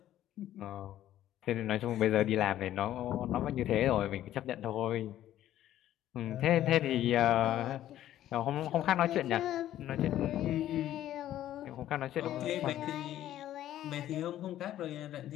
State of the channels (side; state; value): right; quieter; 12.7 dB